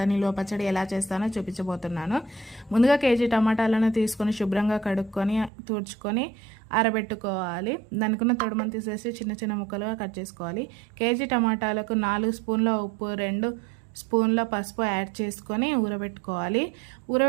నిల్వ పచ్చడి ఎలా చేస్తానో చూపించబోతున్నాను. ముందుగా కేజీ టమాటాలను తీసుకొని శుభ్రంగా కడుక్కొని తుడుచుకొని ఆరబెట్టుకోవాలి. దానికున్న తొడుమని తీసేసి చిన్న చిన్న ముక్కలుగా కట్ చేసుకోవాలి. కేజీ టమాటాలకు 4 స్పూన్ల ఉప్పు, 2 స్పూన్ల పసుపు యాడ్ చేసుకొని ఊరబెట్టుకోవాలి.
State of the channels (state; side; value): drops out; left; at 5.5 s